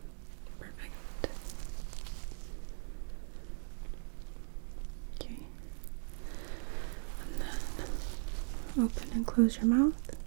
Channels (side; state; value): left; silent; digital silence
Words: perfect. Okay. And then open and close your mouth.